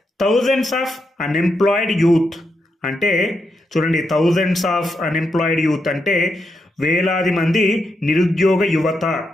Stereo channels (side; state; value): both; normal; correlation 0.82